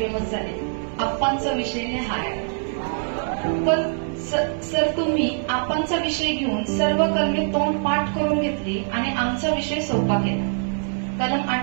झाले, आप्पांचा विषय हाय. पण सर तुम्ही आप्पांचा विषय घेऊन सर्व कलमे तोंड पाठ करून घेतली आणि आमचा विषय सोपा केला. कलम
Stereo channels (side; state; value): left; silent; digital silence